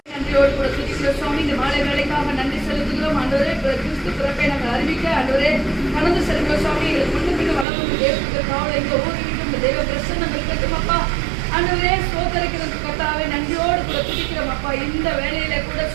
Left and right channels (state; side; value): drops out; left; at 7.7 s